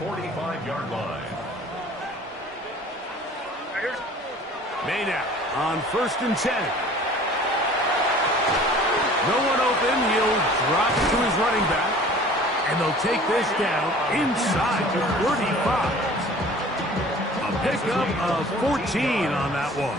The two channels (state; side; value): normal; both; correlation 0.47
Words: 45-yard line. May now on 1st and 10. No one open. He'll drop it to his running back. And they'll take this down inside the 35. A pickup of 14 on that one.